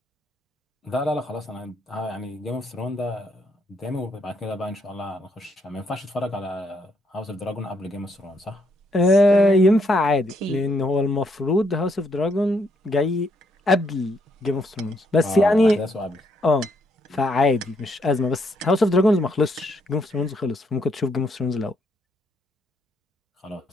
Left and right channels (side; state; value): both; normal; correlation 0.74